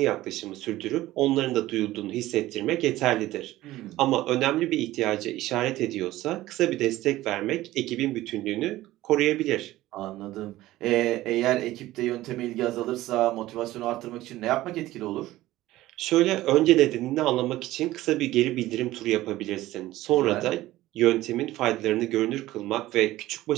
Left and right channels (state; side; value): quieter; left; 16.3 dB